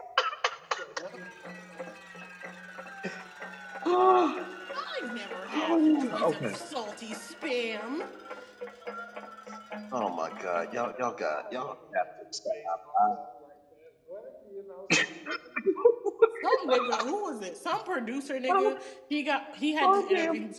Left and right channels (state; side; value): identical; both; correlation 1.00